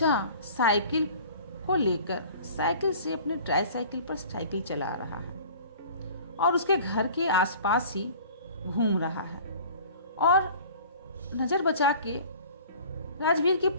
साइकिल को लेकर साइकिल से अपने ट्राईसाइकिल पर साइकिल चला रहा है और उसके घर के आसपास ही घूम रहा है, और नजर बचा के राजवीर की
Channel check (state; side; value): inverted; both; correlation -0.45